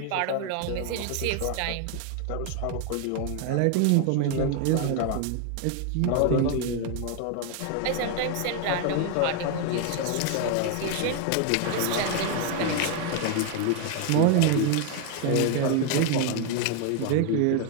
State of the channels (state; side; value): different; both; correlation 0.01